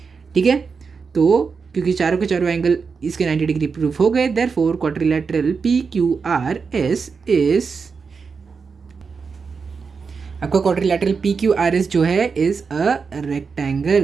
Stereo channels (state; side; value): quieter; left; 5.3 dB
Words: ठीक है, तो क्योंकि चारों के चारों एंगल इसके 90 डिग्री प्रूफ हो गए, therefore quadrilateral P Q R S is, आपका quadrilateral P Q R S जो है इज अ